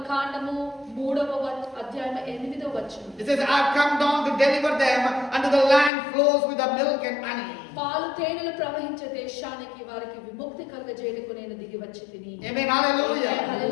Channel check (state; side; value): drops out; right; at 5.9 s